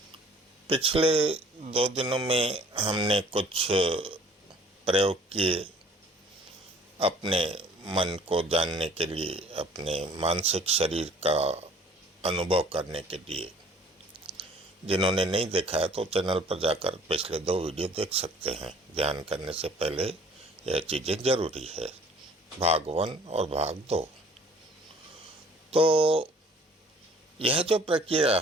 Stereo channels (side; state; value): both; normal; correlation 0.54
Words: पिछले 2 दिनों में हमने कुछ प्रयोग किए अपने मन को जानने के लिए, अपने मानसिक शरीर का अनुभव करने के लिए। जिन्होंने नहीं देखा है तो चैनल पर जाकर पिछले 2 वीडियो देख सकते हैं। ध्यान करने से पहले यह चीज़ें जरूरी है, भाग 1 और भाग 2। तो यह जो प्रक्रिया